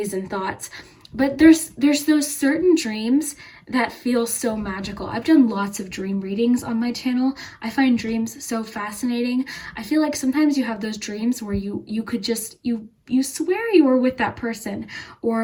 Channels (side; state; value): both; identical; correlation 1.00